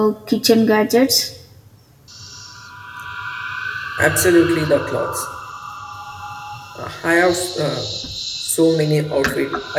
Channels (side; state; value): both; identical; correlation 1.00